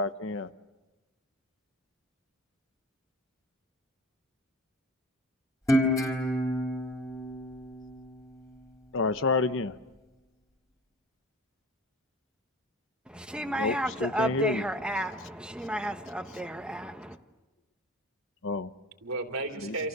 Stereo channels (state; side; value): normal; both; correlation 0.38